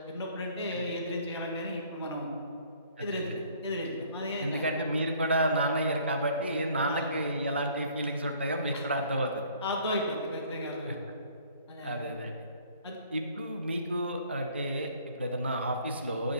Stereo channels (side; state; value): both; inverted; correlation -0.57